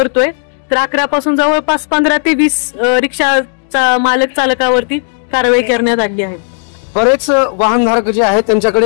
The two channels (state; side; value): silent; right; digital silence